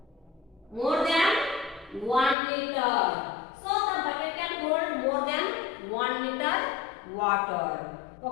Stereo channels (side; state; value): right; drops out; at 2.4 s